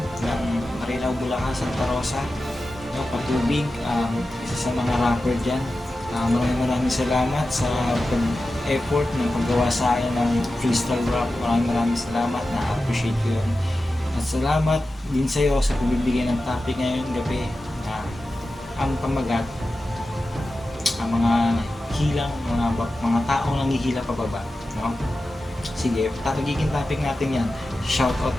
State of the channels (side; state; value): both; normal; correlation 0.93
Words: ng Marilao, Bulacan, Santa Rosa, no, Patubig, isa sa mga rapper dyan. Maraming salamat sa effort ng paggawa sa akin ng freestyle rap. Maraming salamat, na-appreciate ko yun. At salamat din sa iyo sa pagbibigay ng topic ngayong gabi na ang pamagat, ang mga hilang, mga taong nanghihila pababa, no? Sige, tatagiging topic natin yan. Shoutout